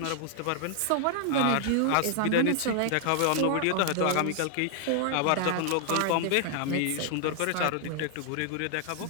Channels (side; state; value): both; different; correlation 0.00